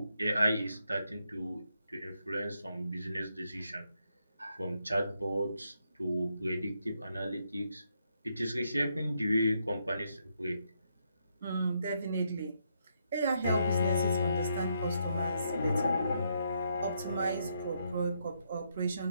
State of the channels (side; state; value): both; inverted; correlation -0.78